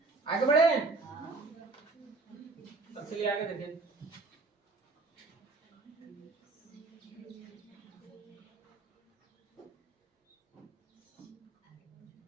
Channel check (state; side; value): quieter; left; 3.6 dB